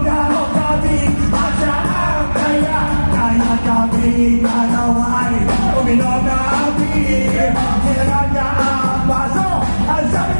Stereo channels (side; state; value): both; inverted; correlation -1.00